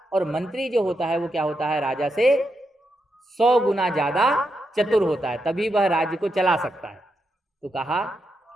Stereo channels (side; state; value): both; normal; correlation 0.84